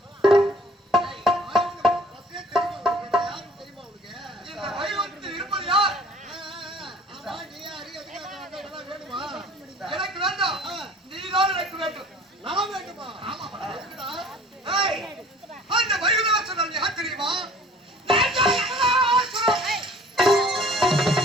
எனக்கு வேண்டாம், நீதான் எனக்கு வேண்டும். நான் வேண்டுமா? அந்த வைகுந்தவாசன் யார் தெரியுமா?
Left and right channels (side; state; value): both; normal; correlation 0.51